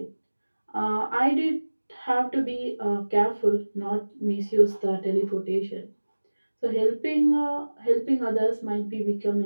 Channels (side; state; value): both; inverted; correlation -1.00